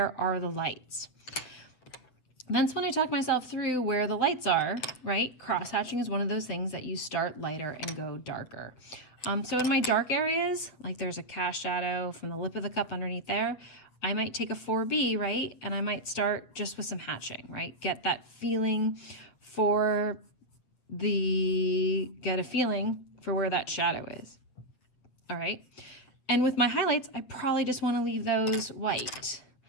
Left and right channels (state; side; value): late; right; 8.1 ms